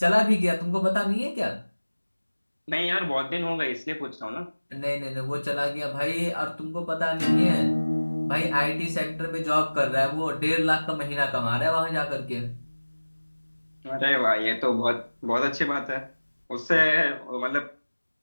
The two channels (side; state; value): both; inverted; correlation -1.00